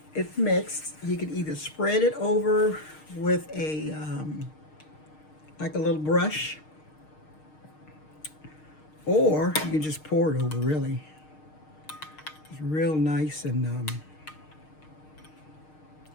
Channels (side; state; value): right; late; 6.5 ms